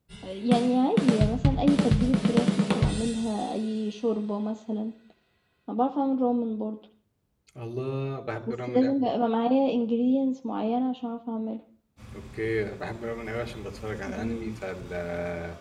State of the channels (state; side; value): identical; both; correlation 1.00